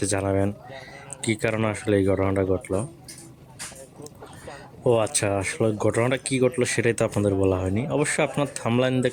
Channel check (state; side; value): identical; both; correlation 1.00